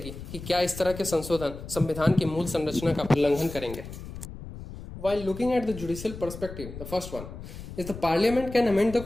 कि क्या इस तरह के संशोधन संविधान की मूल संरचना का उल्लंघन करेंगे। While looking at the judicial perspective, the first one is the parliament can amend the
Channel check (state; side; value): noise; left; rumble, 12 dB below the sound